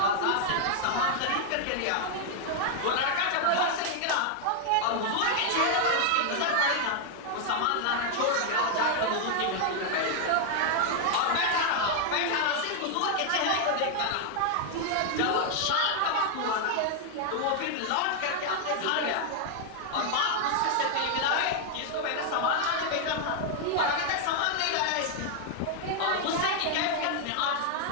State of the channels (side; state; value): both; different; correlation 0.00